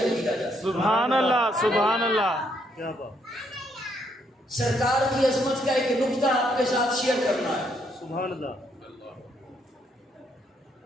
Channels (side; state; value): both; normal; correlation 0.72